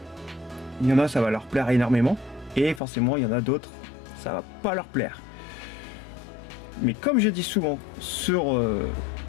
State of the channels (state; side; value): drops out; right; at 2.8 s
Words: Il y en a, ça va leur plaire énormément, et forcément il y en a d'autres, ça va pas leur plaire. Mais comme je dis souvent sur